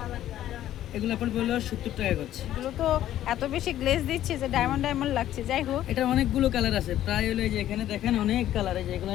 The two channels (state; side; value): quieter; right; 12.5 dB